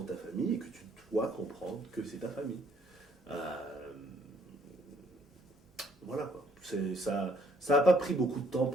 ta famille, et que tu dois comprendre que c'est ta famille. Voilà, quoi. Ça n'a pas pris beaucoup de temps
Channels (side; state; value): both; normal; correlation 0.65